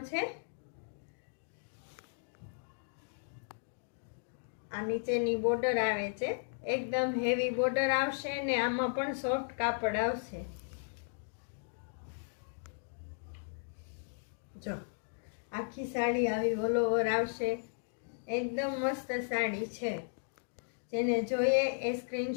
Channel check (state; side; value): silent; right; digital silence